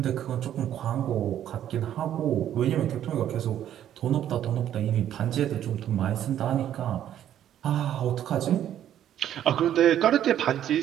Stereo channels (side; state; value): left; quieter; 11.0 dB